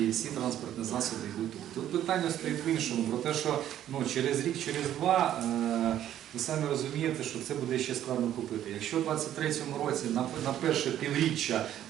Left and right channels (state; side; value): quieter; left; 11.5 dB